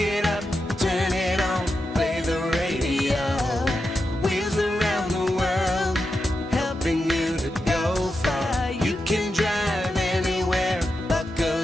up, turn it on, play the radio. Wheels around the world, helping you to go far. You can drive anywhere,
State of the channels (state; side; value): normal; both; correlation 0.88